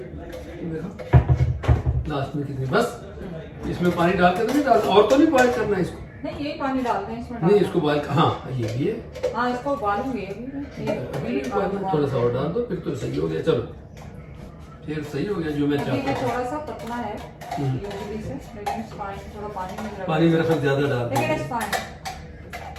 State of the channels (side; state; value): both; identical; correlation 1.00